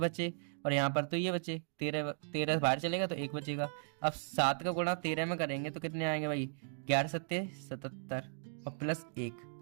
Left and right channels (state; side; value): silent; left; digital silence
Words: और यहाँ पर तो ये बचे, 13 बाहर चलेगा तो 1 बचेगा। अब 7 का गुणा 13 में करेंगे तो कितने आएंगे भाई 11 7 77 और प्लस 1,